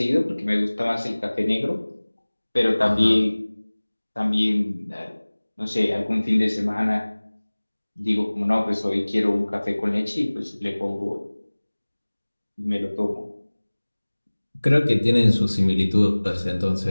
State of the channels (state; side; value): inverted; both; correlation -1.00